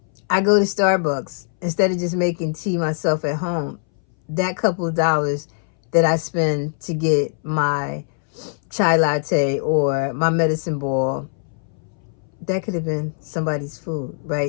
I go to Starbucks instead of just making tea myself at home. That couple of dollars that I spend to get my chai latte or my medicine ball, that could have been somebody's food,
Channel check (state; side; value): silent; right; 62 dB below the other